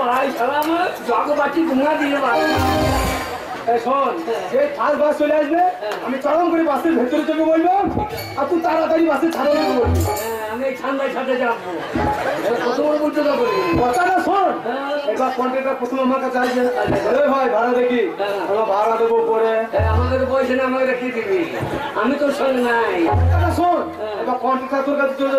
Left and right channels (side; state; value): both; identical; correlation 1.00